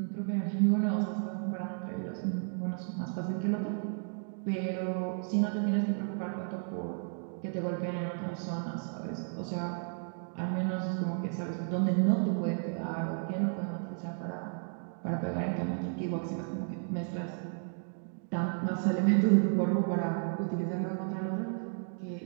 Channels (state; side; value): silent; left; 56 dB below the other